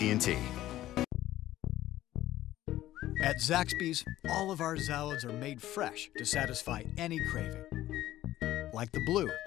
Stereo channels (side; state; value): right; quieter; 14.4 dB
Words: At Zaxby's, all of our salads are made fresh to satisfy any craving. Like the blue,